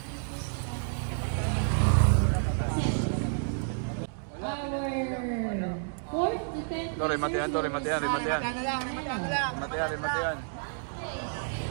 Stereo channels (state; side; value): silent; left; digital silence